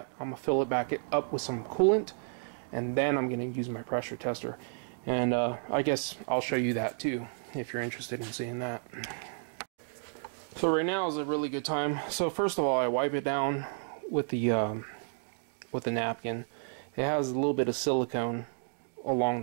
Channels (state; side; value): silent; left; digital silence